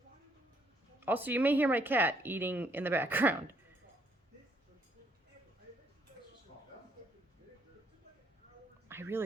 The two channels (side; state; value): both; normal; correlation 0.70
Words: Also, you may hear my cat eating in the background. I